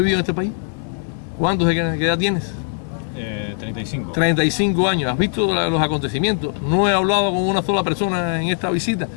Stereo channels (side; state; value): right; silent; 64 dB below the other